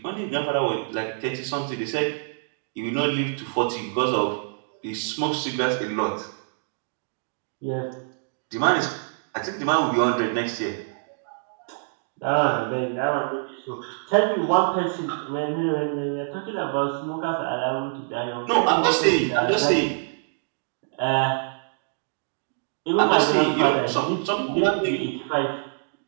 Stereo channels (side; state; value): left; silent; digital silence